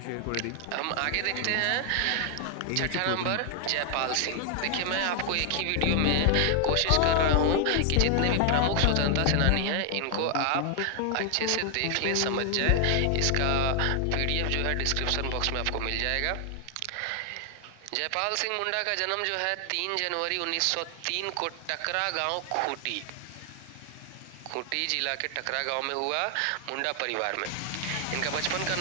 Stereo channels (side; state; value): both; different; correlation 0.00